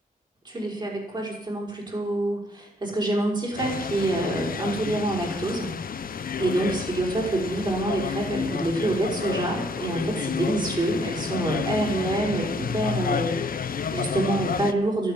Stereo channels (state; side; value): normal; both; correlation 0.65